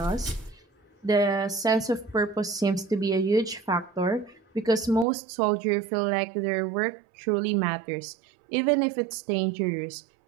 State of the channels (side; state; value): left; drops out; at 5.1 s